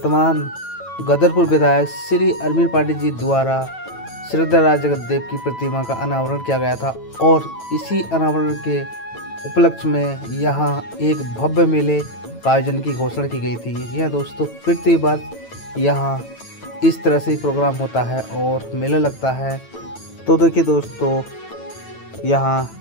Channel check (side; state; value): right; late; 9.0 ms